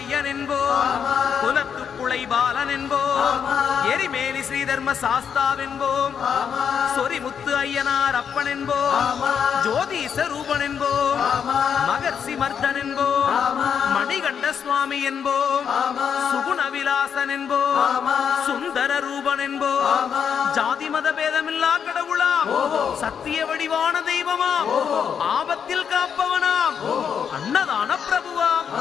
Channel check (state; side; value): quieter; right; 7.5 dB